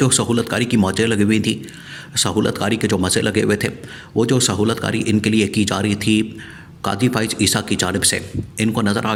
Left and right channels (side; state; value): both; identical; correlation 1.00